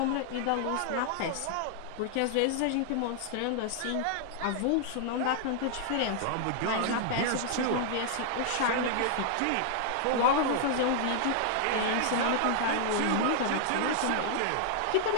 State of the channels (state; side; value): different; both; correlation -0.01